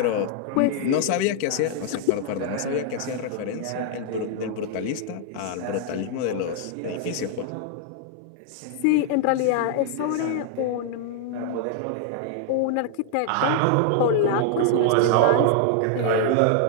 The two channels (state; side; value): different; both; correlation 0.00